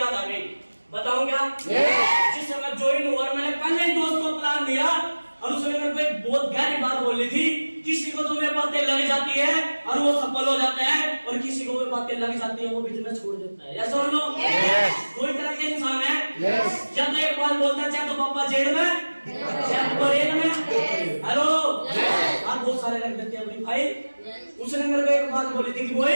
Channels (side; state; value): both; inverted; correlation -1.00